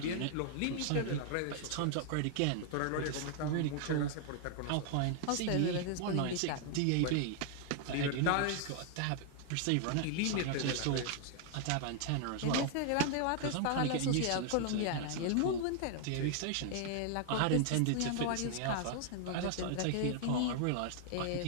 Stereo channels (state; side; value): different; both; correlation 0.00